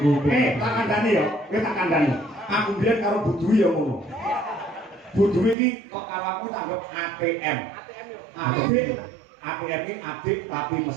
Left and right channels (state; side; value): drops out; left; at 5.6 s